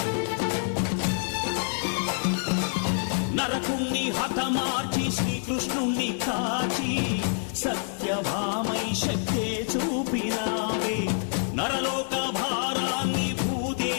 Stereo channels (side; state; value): right; silent; 60 dB below the other